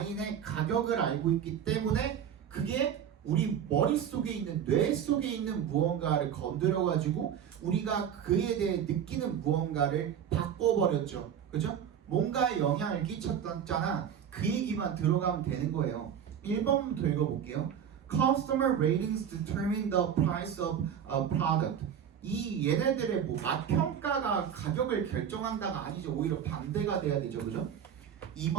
가격을 알고 있기 때문에 그게 우리 머릿속에 있는 뇌 속에 있는 무언가를 건드려 가지고 우리가 그에 대해 느끼는 무언가를 바꿔버렸죠. 그죠? 뭔가에 영향을 끼쳤잖아. 그 얘기만 들어가면 되는 거예요. 1번부터 읽어볼게요. Customer ratings determine the price of a product. 이 얘네들의 뭐 맛평가가 가격을 결정한다가 아니죠. 오히려 반대가 돼야 되죠. 그죠?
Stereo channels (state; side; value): quieter; left; 8.7 dB